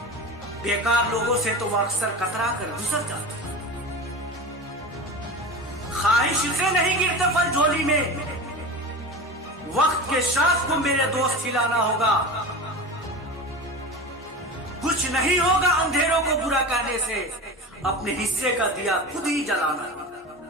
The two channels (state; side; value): normal; both; correlation 0.29